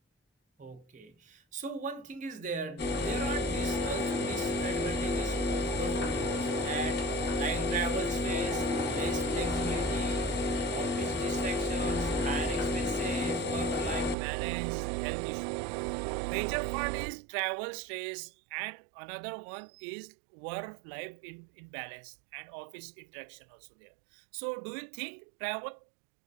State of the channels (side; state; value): left; drops out; at 14.2 s